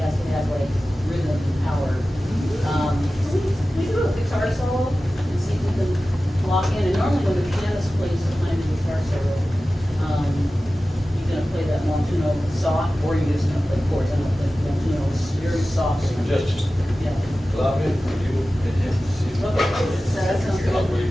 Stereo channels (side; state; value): both; normal; correlation 0.95